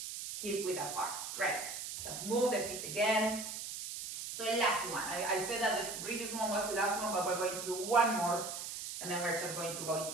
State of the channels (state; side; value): noise; right; hiss, 6 dB below the sound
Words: hip width apart. Great. Just move the feet again. So the last one. I said that the previous one was the last one, but we're going to do one more, and then we're just going to go